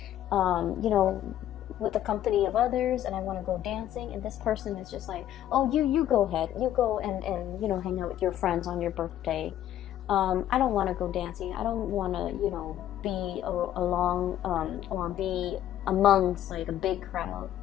with the company of others, and I want to go dancing. And this person is just like, oh, you go ahead. You go and hang out with your friends on your birthday. I don't want to go dancing. I don't want to, be along or be amongst like a big crowd.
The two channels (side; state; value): right; quieter; 11.9 dB